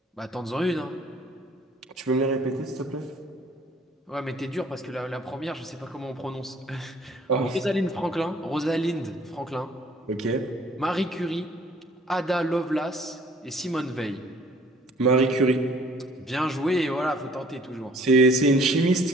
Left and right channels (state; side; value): normal; both; correlation 0.57